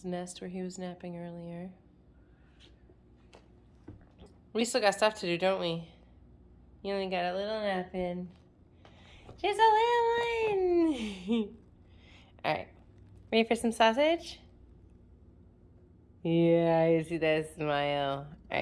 nest where he was napping earlier. We still got stuff to do, don't we? You only got a little nap in. Just a little one. All right. Ready for some sausage? Yeah, I see that smile. All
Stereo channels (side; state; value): both; identical; correlation 1.00